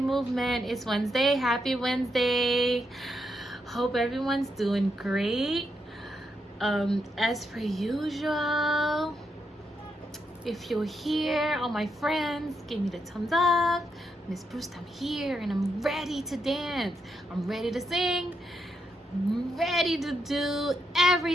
Movement. It's Wednesday. Happy Wednesday. Hope everyone's doing great. As per usual, if you're here, all my friends, give me the thumbs up. Miss Bruce, I'm here and I'm ready to dance. I'm ready to sing. I'm ready to do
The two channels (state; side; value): normal; both; correlation 0.81